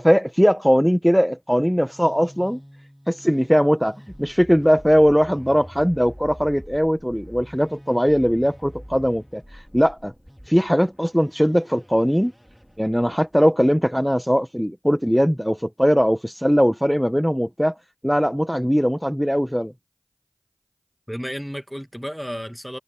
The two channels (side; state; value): both; identical; correlation 1.00